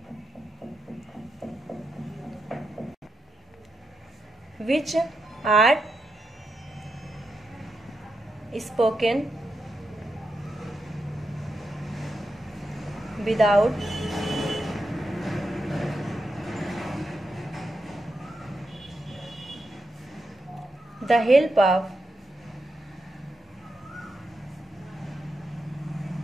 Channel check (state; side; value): normal; both; correlation 0.86